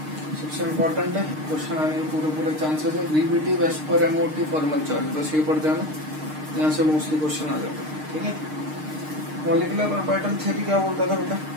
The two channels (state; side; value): late; left; 6.5 ms